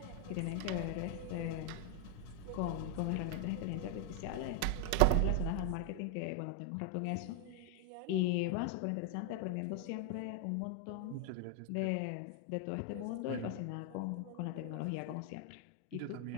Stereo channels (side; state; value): both; different; correlation 0.01